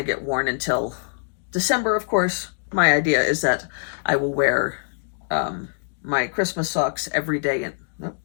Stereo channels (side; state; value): right; silent; digital silence